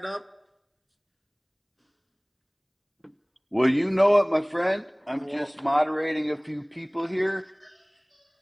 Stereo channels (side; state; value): both; identical; correlation 1.00